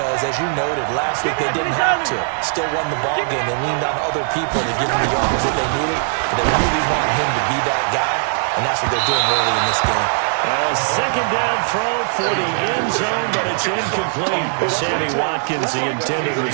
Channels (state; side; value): silent; left; 66 dB below the other